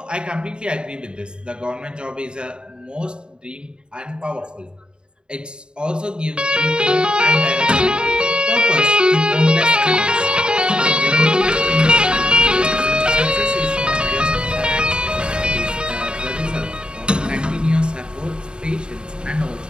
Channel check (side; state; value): left; late; 0.050 ms